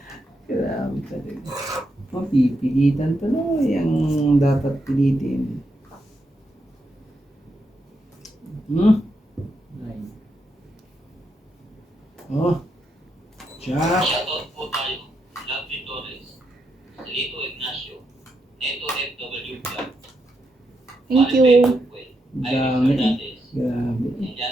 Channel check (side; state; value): both; normal; correlation 0.83